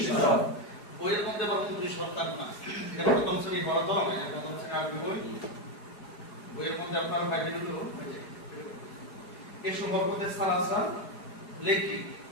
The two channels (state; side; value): late; right; 4.8 ms